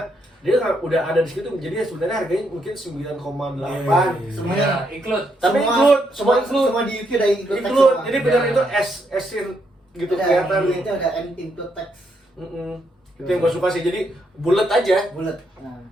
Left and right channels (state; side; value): normal; both; correlation 0.77